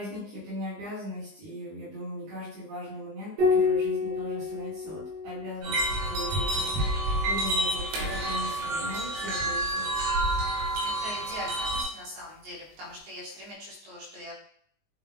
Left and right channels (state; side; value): late; left; 19 ms